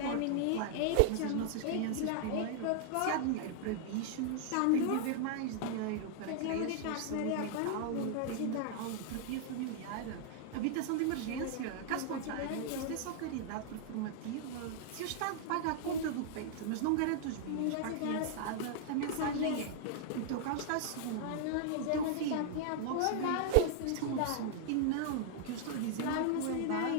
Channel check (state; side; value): different; both; correlation -0.01